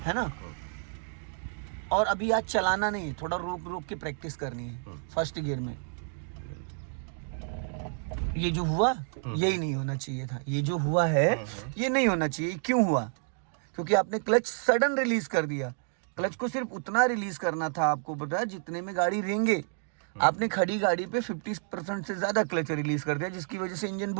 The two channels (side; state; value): left; silent; 58 dB below the other